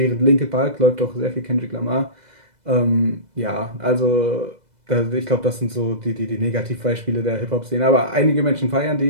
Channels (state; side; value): late; left; 2.0 ms